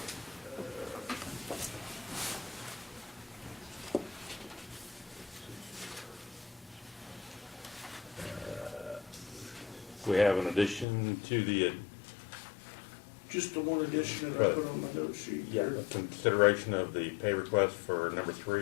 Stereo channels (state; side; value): drops out; right; at 10.9 s